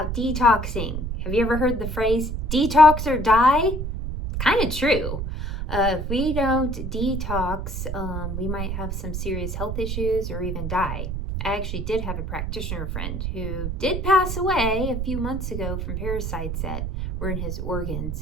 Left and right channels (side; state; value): right; noise; rumble, 3 dB below the sound